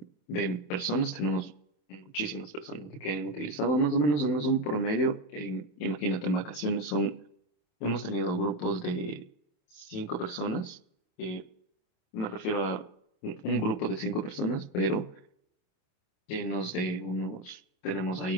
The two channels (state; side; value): late; right; 27 ms